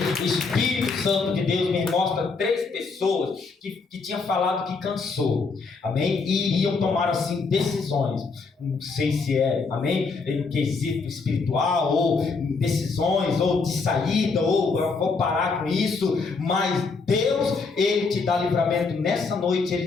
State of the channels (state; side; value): quieter; right; 4.5 dB